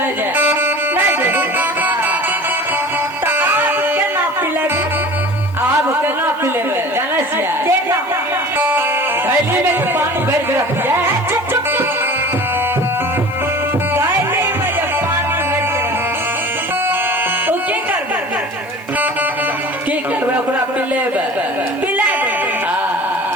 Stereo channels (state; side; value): noise; right; hiss, 27 dB below the sound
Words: जा नहीं दे तो आप के ना पिलेगे आप केना पिलेबे जाने छियै देखो थैली में तो पानी भर के रख दिया चुप चुप गायले में जब पानी भर के ओ की करबे की करबे ओकरा पिलेबे पिला दे हां